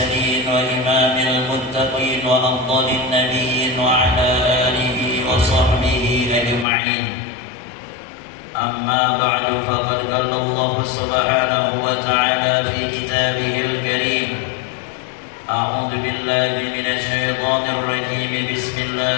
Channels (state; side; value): drops out; right; at 6.7 s